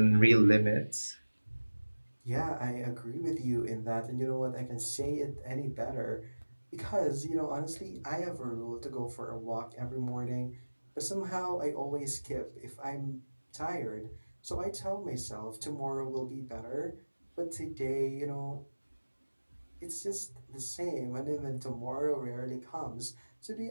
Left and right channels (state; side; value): inverted; both; correlation -1.00